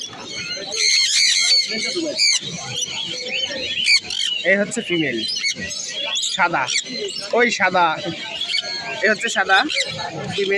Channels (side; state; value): both; identical; correlation 1.00